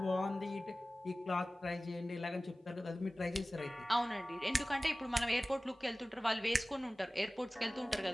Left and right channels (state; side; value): normal; both; correlation 0.97